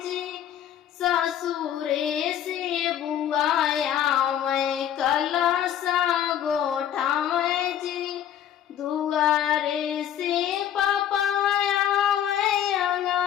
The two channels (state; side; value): quieter; right; 10.3 dB